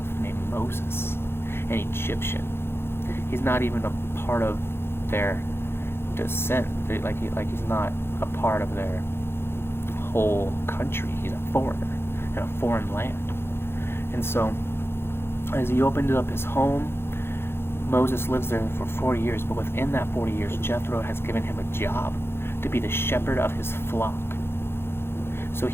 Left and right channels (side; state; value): right; late; 0.11 ms